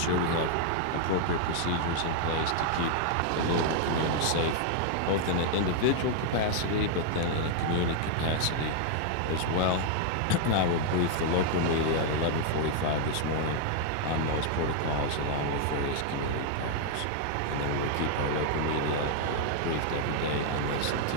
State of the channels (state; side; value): different; both; correlation 0.00